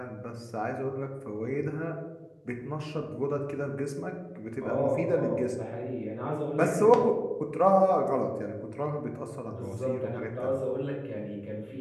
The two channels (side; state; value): both; identical; correlation 1.00